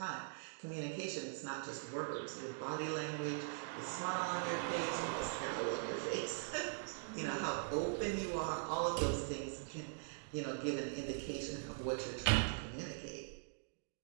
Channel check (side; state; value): left; silent; digital silence